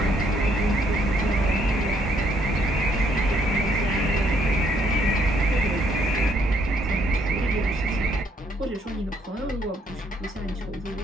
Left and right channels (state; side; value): normal; both; correlation 0.69